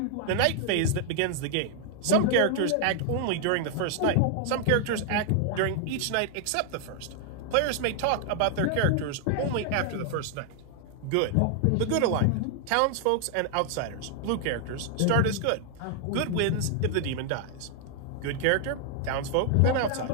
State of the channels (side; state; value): both; different; correlation 0.00